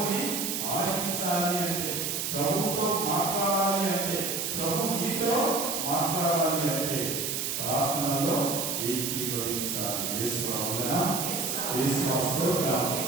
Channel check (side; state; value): right; noise; hiss, 1 dB below the sound